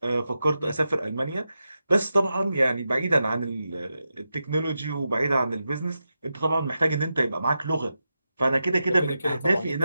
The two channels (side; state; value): both; inverted; correlation -0.89